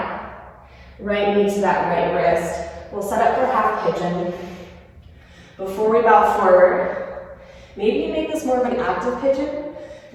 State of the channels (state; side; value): identical; both; correlation 1.00